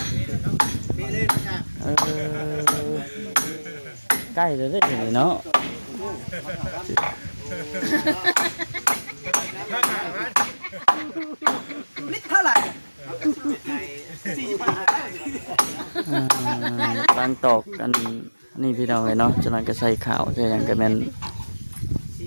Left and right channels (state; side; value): inverted; both; correlation -1.00